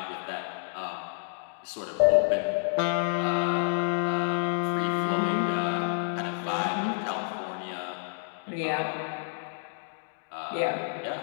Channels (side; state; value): right; silent; digital silence